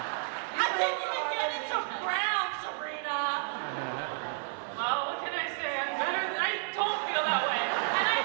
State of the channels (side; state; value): left; silent; 57 dB below the other